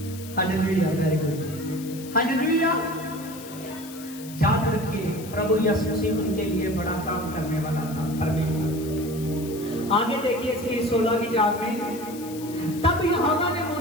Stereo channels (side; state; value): left; noise; hiss, 16 dB below the sound